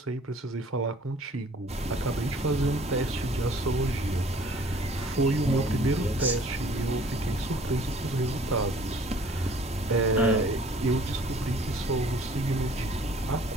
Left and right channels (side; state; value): both; normal; correlation 0.54